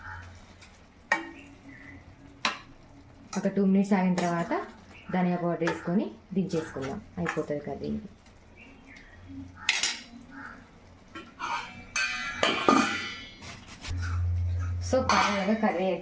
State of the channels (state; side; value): identical; both; correlation 1.00